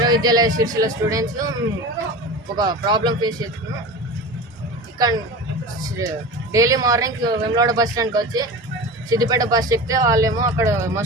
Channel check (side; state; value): both; normal; correlation 0.31